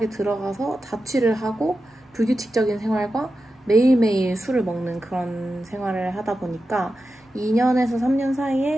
들어가서 자취를 하고 불규칙적인 생활과 매일매일 술을 먹는 그런 생활을 하다 보니까 2년에서 3년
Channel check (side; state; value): both; normal; correlation 0.91